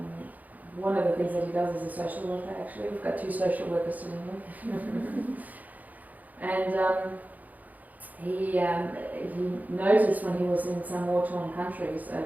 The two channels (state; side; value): late; left; 0.080 ms